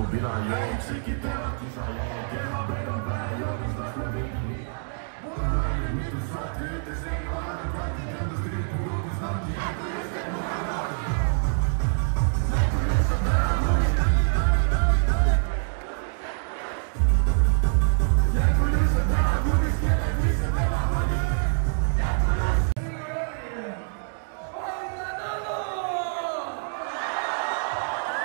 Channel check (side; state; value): left; silent; 61 dB below the other